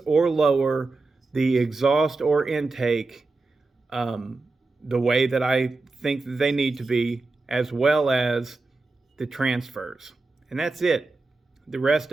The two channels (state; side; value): quieter; left; 3.5 dB